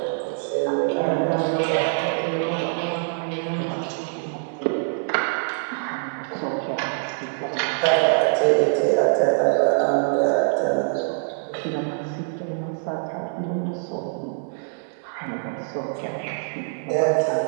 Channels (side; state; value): left; silent; digital silence